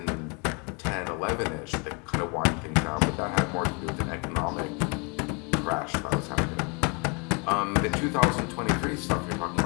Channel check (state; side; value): quieter; right; 33.4 dB